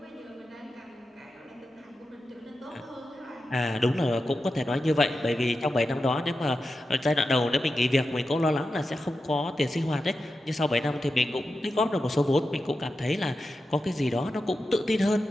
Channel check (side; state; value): both; normal; correlation 0.91